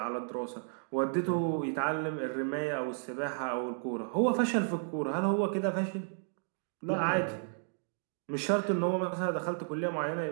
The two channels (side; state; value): left; silent; digital silence